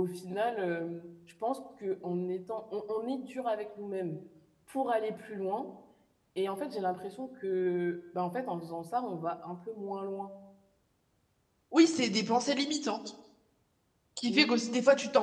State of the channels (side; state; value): both; identical; correlation 1.00